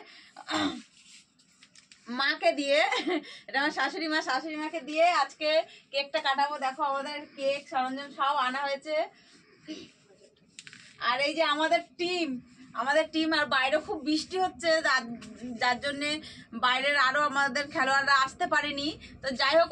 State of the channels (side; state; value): both; identical; correlation 1.00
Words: মাকে দিয়ে, এটা আমার শাশুড়ি মাকে দিয়ে আজকে কেকটা কাটাবো। দেখো আমাদের কেক সরঞ্জাম সব আনা হয়েছে। আর এই যে আমাদের টিম আর বাইরে খুব বৃষ্টি হচ্ছে, যার জন্যে বাইরের আরো আমাদের খেলোয়াড়রা আসতে পারেনি। তো যাই হোক,